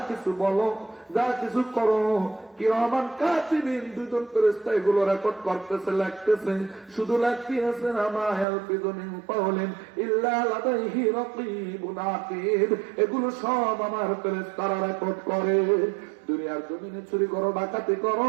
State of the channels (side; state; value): left; drops out; at 8.5 s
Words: কিছু বলো, যা কিছু করো, কিরামান কাতিবিন, দুজন ফেরেশতা এগুলো রেকর্ড করতেছে, লিখতেছে। শুধু লিখতেছে না, মা ইয়ালফিযু মিন কাওলিন ইল্লা লাদাইহি রাকীবুন আতীদ। এগুলো সব আমার ফেরেশতারা রেকর্ড করে। দুনিয়ার জমিনে চুরি করো, ডাকাতি করো,